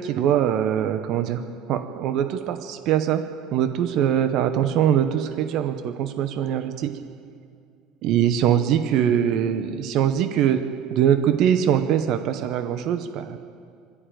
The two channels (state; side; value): quieter; left; 9.4 dB